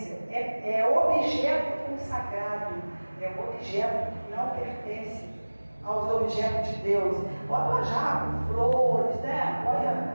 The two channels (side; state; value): both; inverted; correlation -1.00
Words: É objeto consagrado, é objeto que não pertence aos objetos de Deus. Bota uma jarra, flores, né?